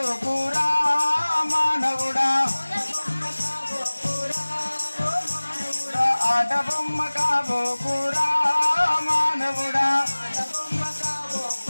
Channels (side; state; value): both; inverted; correlation -1.00